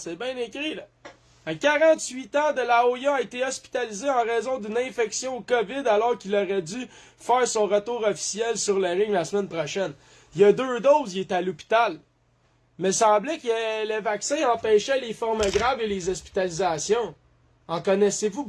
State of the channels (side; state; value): both; identical; correlation 1.00